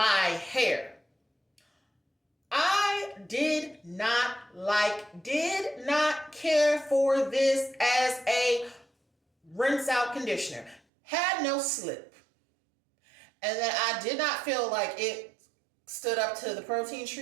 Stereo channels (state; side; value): drops out; left; at 10.8 s